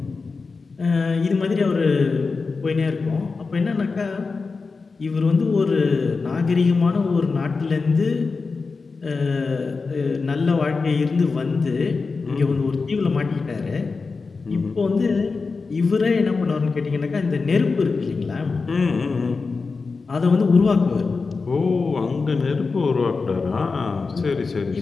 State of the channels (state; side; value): quieter; right; 4.4 dB